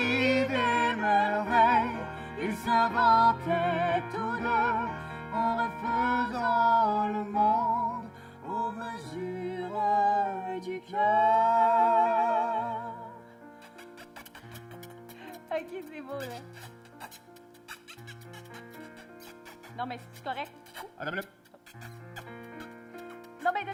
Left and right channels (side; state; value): both; identical; correlation 1.00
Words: des merveilles. Ils s'inventaient tous 2 en refaisant le monde aux mesures du cœur. Ok, c'est beau, là. Non, mais c'est correct. Madame le... Non, mais de